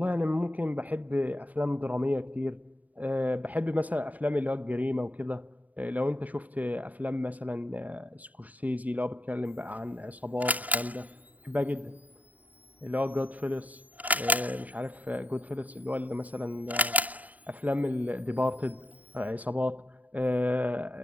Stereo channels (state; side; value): late; left; 0.074 ms